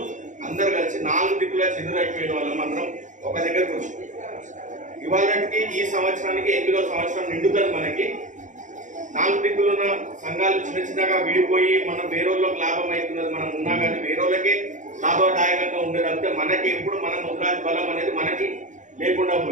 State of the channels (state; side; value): late; left; 0.36 ms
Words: అందరు కలిసి 4 దిక్కులా చెదురైపోయిన వాళ్ళం అందరం ఒక దగ్గరకు వచ్చి ఇవాళకి ఈ సంవత్సరానికి 8వ సంవత్సరం నిండుతుంది. మనకి 4 దిక్కులున్న సంఘాలు చిన్నగా విడిపోయి మనం వేరేళ్ళకి లాభం అవుతున్నది మనం ఉన్నా కానీ వేరేళ్ళకే లాభదాయకంగా ఉండేది అంటే మనకి ఎప్పుడు మన ముద్రాజ్ బలం అనేది మనకి లేకుండా